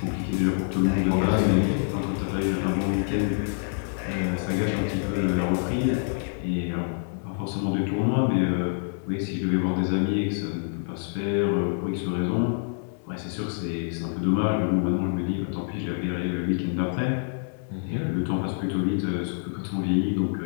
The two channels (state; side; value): silent; right; digital silence